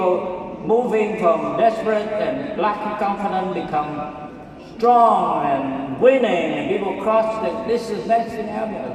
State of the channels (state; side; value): identical; both; correlation 1.00